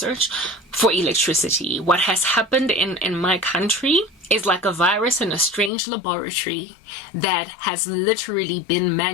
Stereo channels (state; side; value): drops out; right; at 5.7 s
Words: for electricity. What has happened in my country is like a virus in a strange laboratory that has literally been